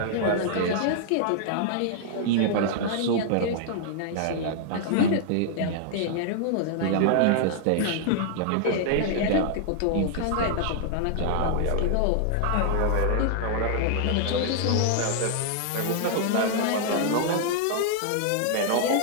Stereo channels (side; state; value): both; different; correlation -0.01